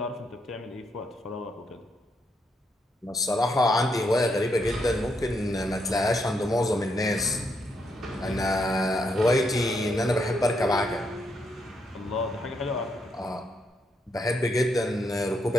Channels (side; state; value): both; normal; correlation 0.78